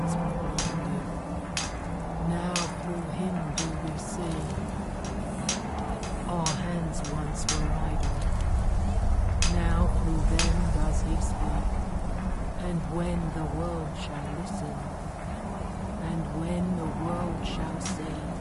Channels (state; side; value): identical; both; correlation 1.00